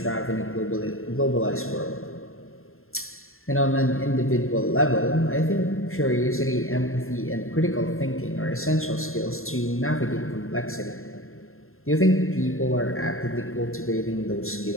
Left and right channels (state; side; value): late; right; 0.61 ms